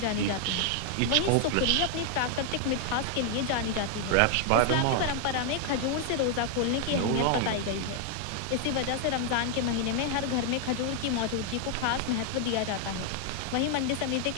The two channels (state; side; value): different; both; correlation 0.00